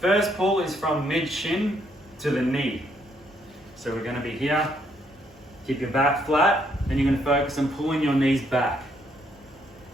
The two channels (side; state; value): both; normal; correlation 0.72